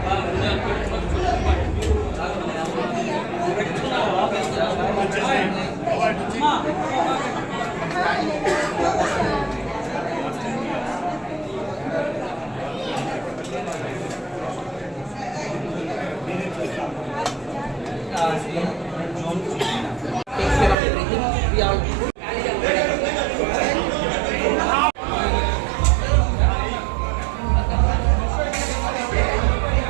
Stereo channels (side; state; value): left; drops out; at 20.8 s